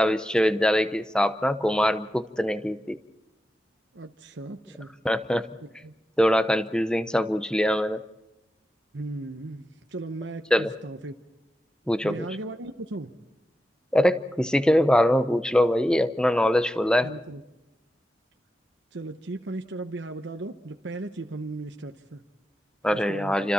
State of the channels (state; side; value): normal; both; correlation 0.90